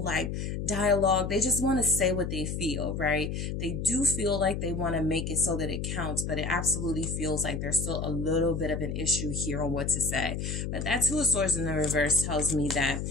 like dialogue. They just want to say what they feel, right? They do feel like they want to make it so that it counts, but it absolutely feels like there's still a little bit of an issue here on what to say. But that Two of Swords in the reverse tells me that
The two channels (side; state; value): left; noise; hum, 3 dB below the sound